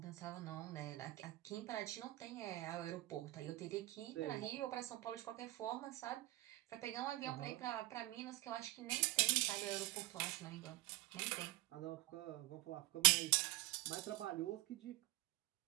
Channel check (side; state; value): left; quieter; 18.9 dB